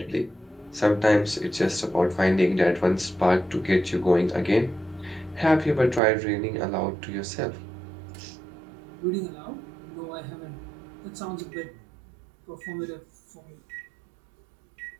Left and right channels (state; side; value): drops out; left; at 6.0 s